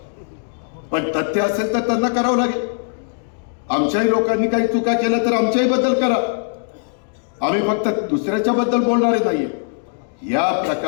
पण तथ्य असेल तर त्यांना करावं लागेल. आमच्याही लोकांनी काही चुका केल्या तर आमच्याही बद्दल करा. आम्ही फक्त दुसऱ्याच्या बद्दल बोलणारे नाहीये. या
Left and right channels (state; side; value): silent; right; digital silence